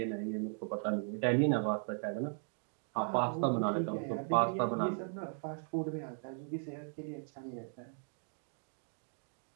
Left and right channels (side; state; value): left; silent; 53 dB below the other